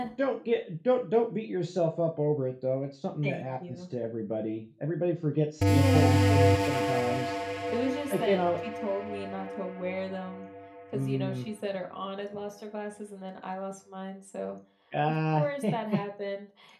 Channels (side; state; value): both; identical; correlation 1.00